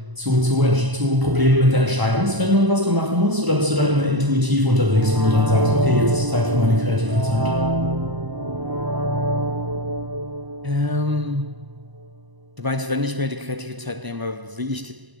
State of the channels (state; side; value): late; left; 1.0 ms